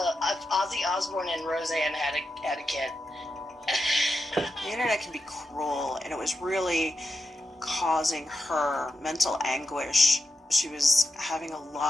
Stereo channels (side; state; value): both; normal; correlation 0.88